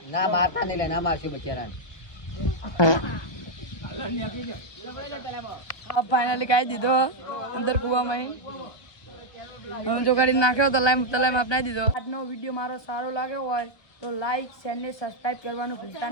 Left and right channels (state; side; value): late; right; 1.2 ms